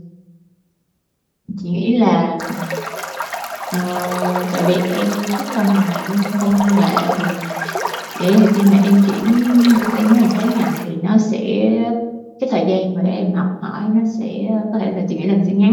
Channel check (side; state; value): both; identical; correlation 1.00